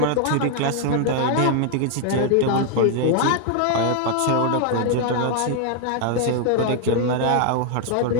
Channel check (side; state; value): both; different; correlation 0.00